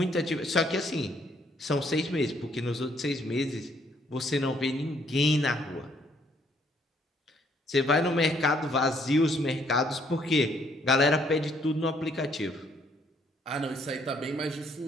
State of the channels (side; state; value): both; normal; correlation 0.67